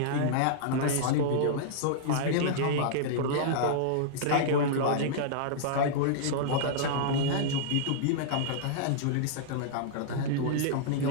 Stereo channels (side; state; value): both; different; correlation -0.02